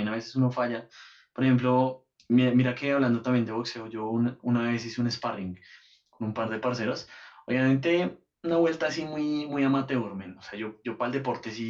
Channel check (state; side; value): identical; both; correlation 1.00